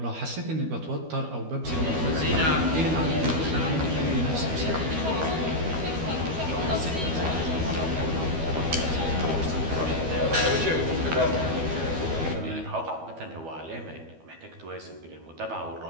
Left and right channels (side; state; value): left; late; 12 ms